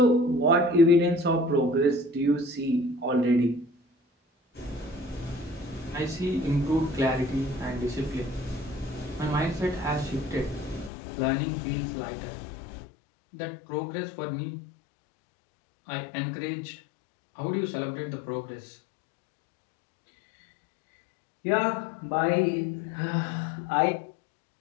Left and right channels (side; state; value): right; drops out; at 10.9 s